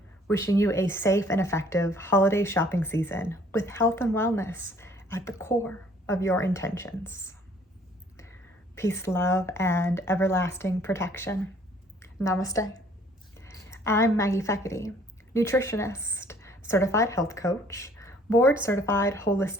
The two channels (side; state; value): both; normal; correlation 0.58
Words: Wishing you a safe and effective holiday shopping season with health and wellness at the core of your intentions. Peace, love, and everlasting protection. Namaste. I'm Maggie Feckety, nutritionist, certified health coach, board certified